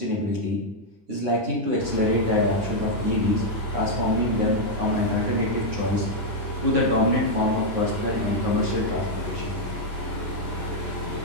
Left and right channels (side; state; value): left; late; 9.6 ms